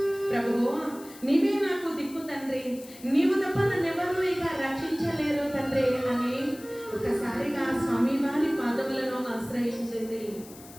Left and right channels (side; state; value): left; noise; hiss, 19 dB below the sound